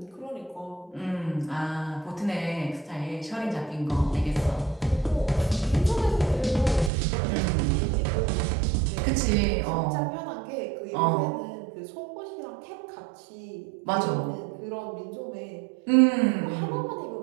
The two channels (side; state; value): left; drops out; at 6.9 s